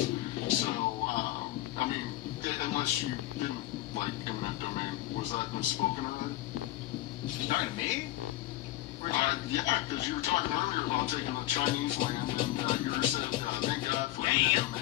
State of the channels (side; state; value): right; quieter; 16.1 dB